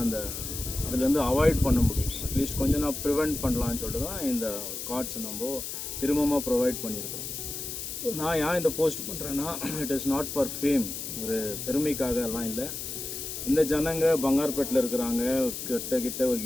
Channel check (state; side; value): noise; left; hiss, 6 dB below the sound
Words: அந்த அதுலேருந்து அவாய்ட் பண்ண முடியும். அட்லீஸ்ட் கொஞ்சம் நான் ப்ரிவெண்ட் பண்ணலான்னு சொல்லிட்டு தான் இந்த கார்ட்ஸை நம்ம திரும்பமாக ப்ரொவைட் பண்ணியிருக்கிறோம். நான் ஏன் இந்த போஸ்ட் பண்ணுறேன்னா, it is not for fame, ஒரு பெருமைக்காக எல்லாம் இல்லை. இந்த ஜனங்க பங்கார்பேட்டில் இருக்கிறாங்க, கிட்ட ஒரு